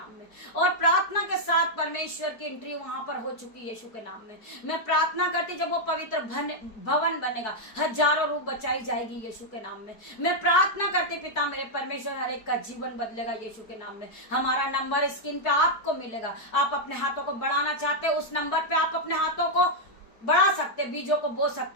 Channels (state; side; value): late; right; 4.7 ms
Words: में, और प्रार्थना के साथ परमेश्वर की एंट्री वहां पर हो चुकी है यीशु के नाम में। मैं प्रार्थना करती, जब वो पवित्र भवन बनेगा, हजारों रूप बचाई जाएगी यीशु के नाम में। मैं प्रार्थना करती पिता मेरे परमेश्वर, हर एक का जीवन बदलेगा यीशु के नाम में। हमारा नंबर स्क्रीन पे आपको मिलेगा, आप अपने हाथों को बढ़ाना चाहते हैं, उस नंबर पे आप अपने हाथों को बढ़ा सकते, बीजों को बो